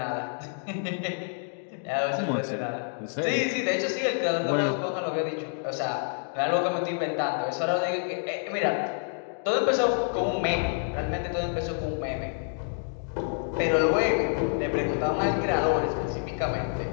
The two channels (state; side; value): silent; right; digital silence